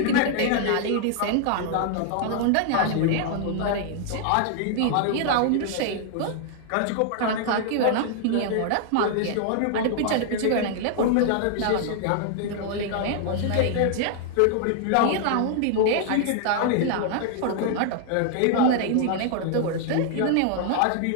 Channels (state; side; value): different; both; correlation 0.00